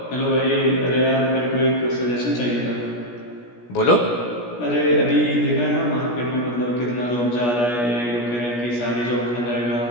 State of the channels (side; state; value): right; late; 17 ms